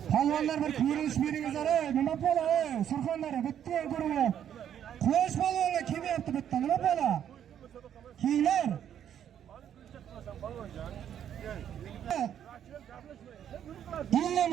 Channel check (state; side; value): quieter; left; 9.7 dB